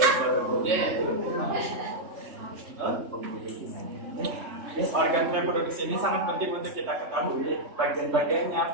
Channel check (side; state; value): left; late; 3.2 ms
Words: Organ reproduksi ini sangat penting untuk kita ketahui bagian-bagiannya,